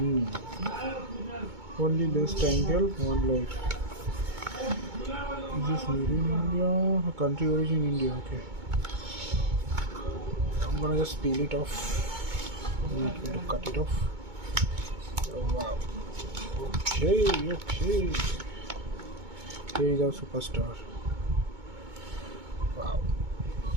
Only less angle, one light. Is this made in India? Country origin India. Okay. I'm gonna just peel it off. I'm not going to cut it off. Oh wow. Okay. Here is our superstar. Wow.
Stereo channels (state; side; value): late; left; 2.2 ms